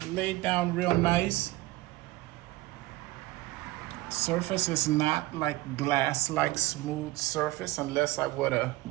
laid down real nice. Surface is not like glass-like smooth surface, unless I would have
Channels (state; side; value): quieter; left; 18.8 dB